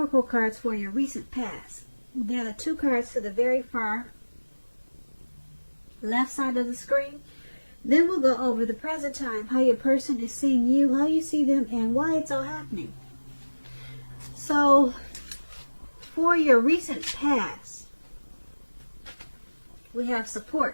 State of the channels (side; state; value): both; inverted; correlation -1.00